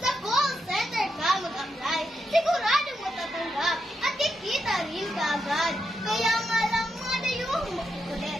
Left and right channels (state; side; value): normal; both; correlation 0.84